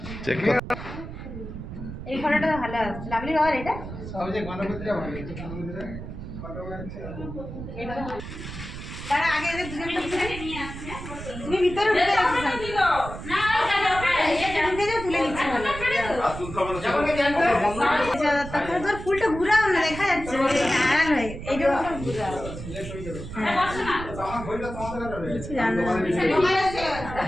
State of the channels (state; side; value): noise; right; rumble, 10 dB below the sound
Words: চেক কর। এই ফটোটা তো ভালো আসছে। লাভলি বাবার এটা সবচেয়ে গণপতিটা ভালো হয়েছে। গণপতিটা ফটো আছে। তারা আগে এদের দুজনকে ভিতরে নিয়ে আসছে। তুমি ভিতরে ঢুকে যাচ্ছ না, ঢুকে যাও, তুলে নিচ্ছি ভালো। তারপরে তোর ফুলটা ঘুরাও না, দেখা যাচ্ছে আড়াল হয়ে এইটা ঘুরাও। কিছু জানো না।